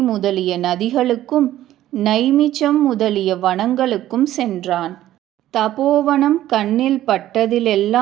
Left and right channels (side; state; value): left; quieter; 13.5 dB